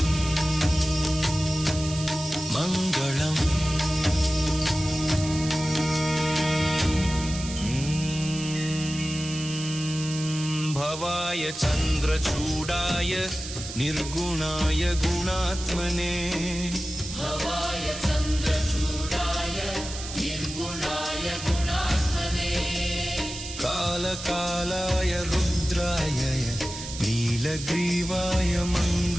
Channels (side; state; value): right; noise; hiss, 10 dB below the sound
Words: चन्द्रचूडाय निर्गुणाय गुणात्मने भवाय चन्द्रचूडाय निर्गुणाय गुणात्मने कालकालाय रुद्राय नीलग्रीवाय